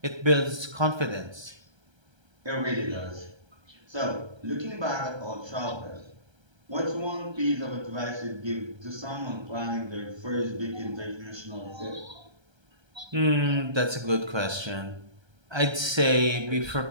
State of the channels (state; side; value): late; left; 1.3 ms